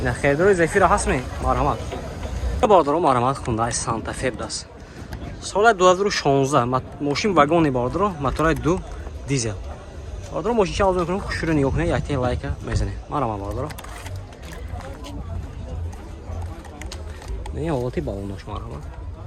Не хердро Zafira ҳастме? Марҳамат. Бародаро марҳамат Hyundai Santa Fe даст. Соли 2016 мошин вагони бародаро, мотори 2 дизел. Бародаро мошинча арзон мекунем, хушро нигоҳ кунед, якте лайка мезанед. Марҳамат бародаро. Не ҳолати балонош марҳамат.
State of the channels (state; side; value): identical; both; correlation 1.00